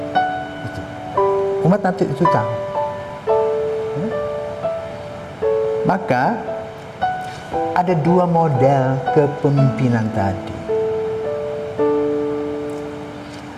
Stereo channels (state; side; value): identical; both; correlation 1.00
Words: Itu. Umat nanti itu tahu. Ya? Maka ada dua model kepemimpinan tadi.